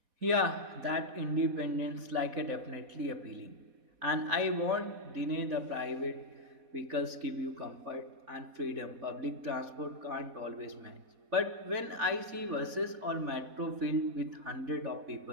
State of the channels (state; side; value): late; left; 4.1 ms